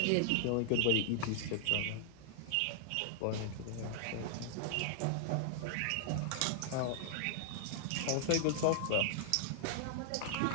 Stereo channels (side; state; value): both; different; correlation -0.01